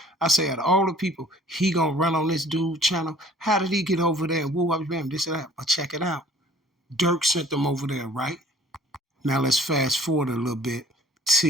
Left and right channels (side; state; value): both; normal; correlation 0.52